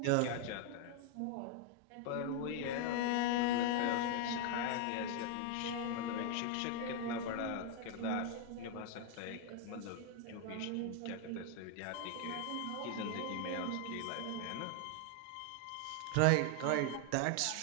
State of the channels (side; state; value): both; different; correlation 0.00